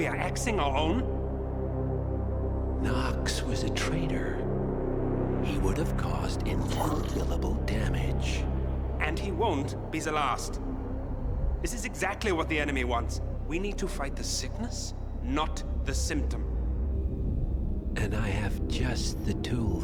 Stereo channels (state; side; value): identical; both; correlation 1.00